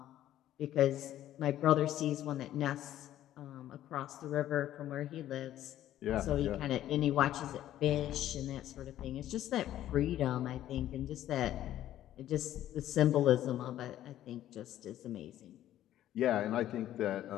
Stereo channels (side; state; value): right; quieter; 12.7 dB